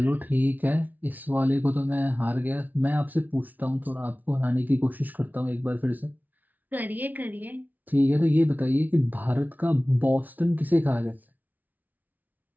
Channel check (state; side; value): late; left; 0.080 ms